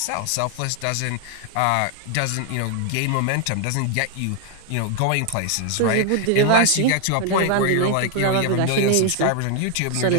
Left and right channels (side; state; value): both; different; correlation 0.00